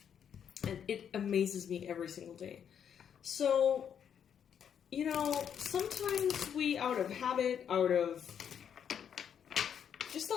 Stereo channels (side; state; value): right; quieter; 8.3 dB